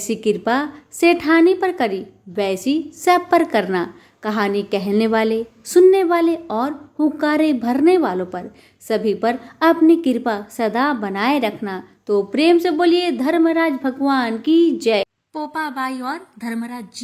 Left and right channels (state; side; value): identical; both; correlation 1.00